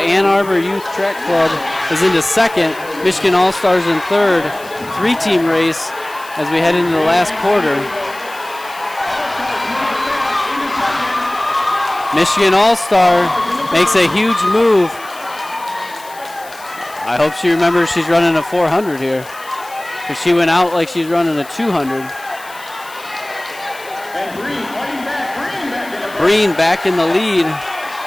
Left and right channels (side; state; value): left; noise; hiss, 20 dB below the sound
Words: Arbor Youth Track Club is into second. Michigan All-Stars in third. Three-team race as we head into the last quarter. Michigan All-Star makes a huge move. I hope she remembers she's running a 400 here, because she went out like she's running a 200. Breen back in the lead.